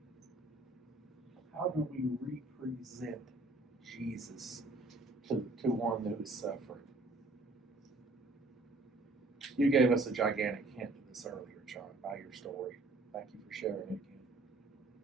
How do we represent Jesus to one who is suffering? You gave us a gigantic hint to this earlier, John, by your story. Thank you for sharing it again.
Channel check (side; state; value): left; quieter; 3.1 dB